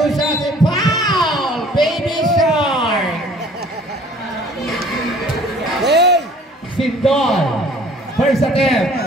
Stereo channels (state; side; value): normal; both; correlation 0.53